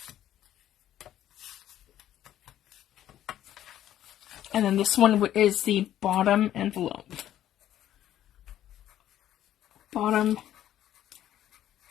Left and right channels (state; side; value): quieter; right; 12.0 dB